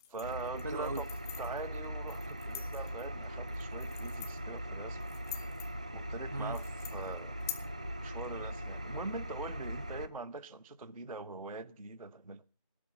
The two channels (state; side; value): inverted; both; correlation -0.51